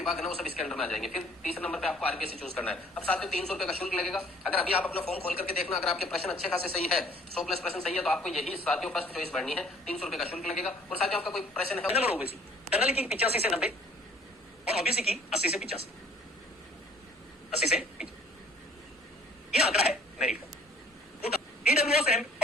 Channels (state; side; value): normal; both; correlation 0.56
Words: है ना वो सब इसके अंदर में आ जाएंगे। फिर तीसरे नंबर पे आपको आरपीएससी चूज करना है। अब साथियों 300 रुपए का शुल्क लगेगा। अगर अभी आप अपना फॉर्म खोल करके देखना, अगर आपके प्रश्न अच्छे खासे सही है, 100 प्लस प्रश्न सही है, तो आपको यही साथियों फर्स्ट चॉइस भरनी है। 300 रुपए का शुल्क लगेगा। और साथियों आपका कोई प्रश्न है जनरल ओबीसी, जनरल की 85 से 90 और ओबीसी की 80 से 85, 80 से 85 ये आंकड़ा है मेरिट का। ईडब्ल्यूएस